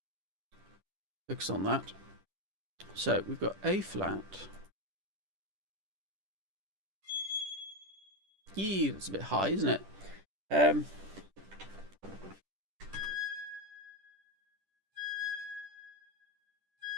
Focus on that. So we've got A flat. Yee, that's a bit high, isn't it? Yeah,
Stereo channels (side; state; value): left; late; 10 ms